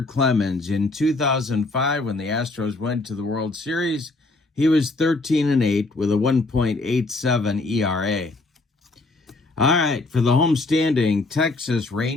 Clemens. In 2005, when the Astros went to the World Series, he was 13-8 with a 1.87 ERA. All right, for the homestanding Texas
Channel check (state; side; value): quieter; right; 3.2 dB